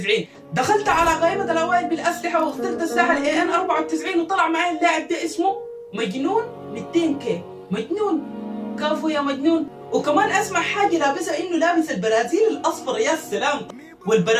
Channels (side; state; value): both; identical; correlation 1.00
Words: دخلت على قائمة الاوائل بالاسلحة واخترت سلاح الاي ان 94 وطلع معي اللاعب ده اسمه مجنون 200 كي. مجنون كافو يا مجنون. وكمان اسمع حاجة لابسها انه لابس البرازيل الاصفر، يا سلام.